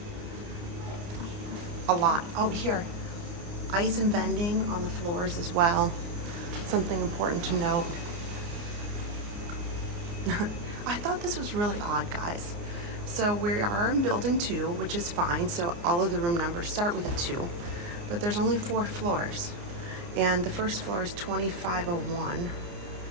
a lot. Oh, here, ice and vending on the floors as well. Something important to note. I thought this was really odd, guys. So we are in building 2, which is fine. So all of the room numbers start with a 2, but there's only 4 floors. And the first floor is 2501.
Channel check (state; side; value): late; left; 29 ms